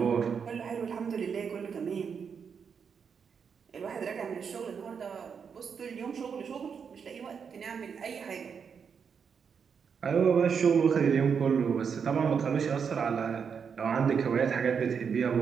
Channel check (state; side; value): quieter; left; 6.5 dB